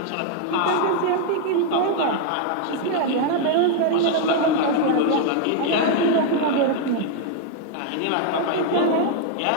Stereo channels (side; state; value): both; different; correlation 0.00